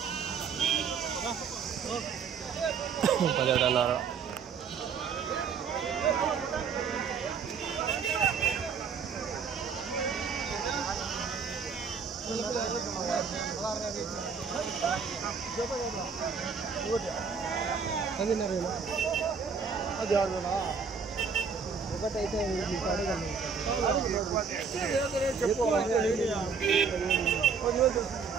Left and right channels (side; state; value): left; quieter; 5.8 dB